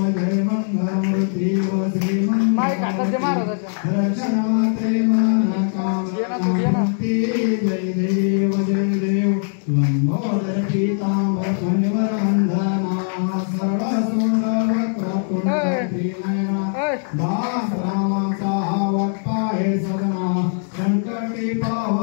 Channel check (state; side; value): silent; right; digital silence